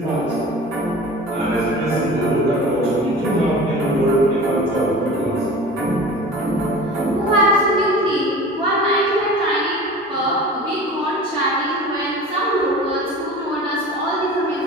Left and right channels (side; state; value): both; normal; correlation 0.38